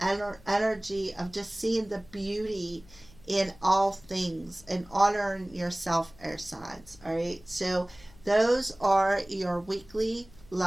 energy of just seeing the beauty in all things and honoring yourself, air signs. All right, so those are your weekly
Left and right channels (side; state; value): left; noise; hum, 24 dB below the sound